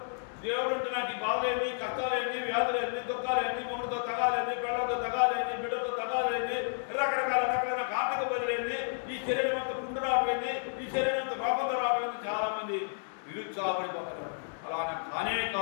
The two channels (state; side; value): silent; right; digital silence